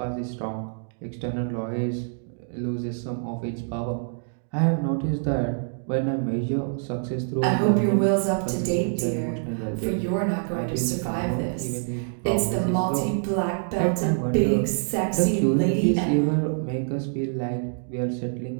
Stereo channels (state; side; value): silent; left; digital silence